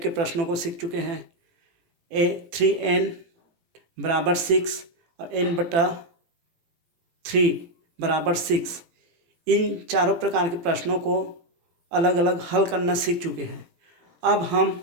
के प्रश्नों को सीख चुके हैं। 3n = 6 और n/3 = 6 इन चारों प्रकार के प्रश्नों को अलग अलग हल करना सीख चुके हैं। अब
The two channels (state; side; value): late; left; 18 ms